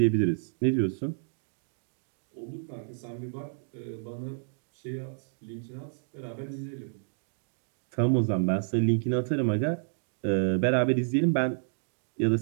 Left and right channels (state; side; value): silent; left; digital silence